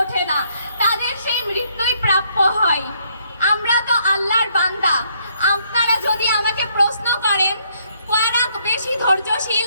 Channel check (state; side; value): inverted; both; correlation -0.69